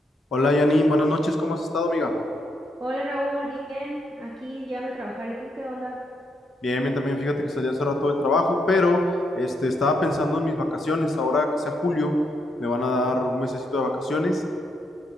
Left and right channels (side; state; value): both; normal; correlation 0.78